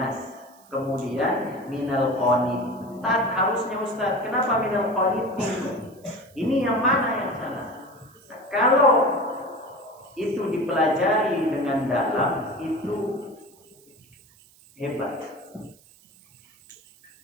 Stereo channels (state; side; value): noise; right; hiss, 28 dB below the sound